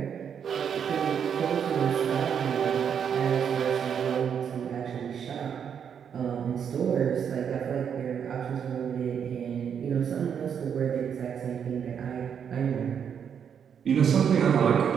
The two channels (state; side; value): quieter; left; 7.8 dB